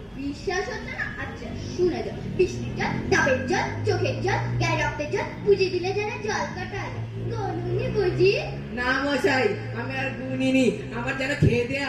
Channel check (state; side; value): identical; both; correlation 1.00